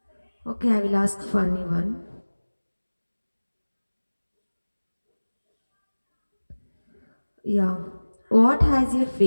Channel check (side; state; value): both; inverted; correlation -1.00